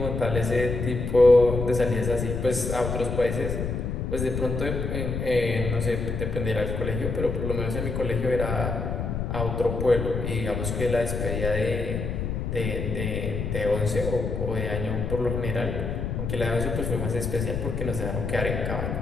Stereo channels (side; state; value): left; noise; rumble, 3 dB below the sound